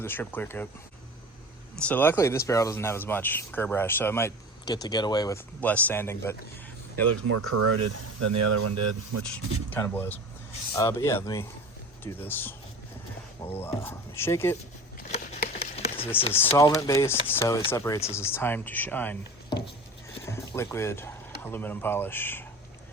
the strip clear coat. So luckily this barrel doesn't have as much curb rash, so I might get away with less sanding, but it looks more corroded than the other one did, which kind of blows. But yeah, let me do this. We'll shake it. This is solvent based, so it separates. This is Time to Shine liquid aluminum polish.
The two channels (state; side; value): normal; both; correlation 0.35